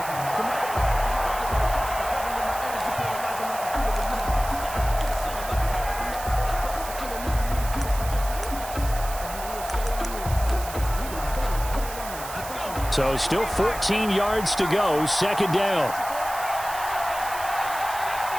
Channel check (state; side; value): noise; right; hiss, 11 dB below the sound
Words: So still 14 yards to go, 2nd down.